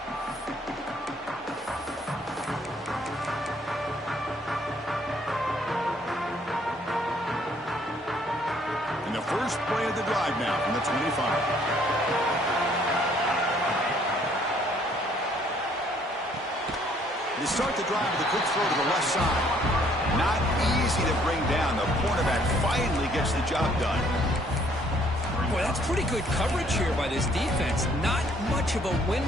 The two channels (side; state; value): both; normal; correlation 0.63